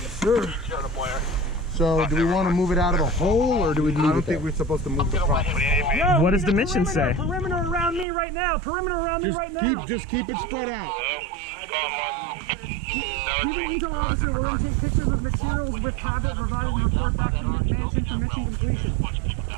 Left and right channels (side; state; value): left; drops out; at 8.1 s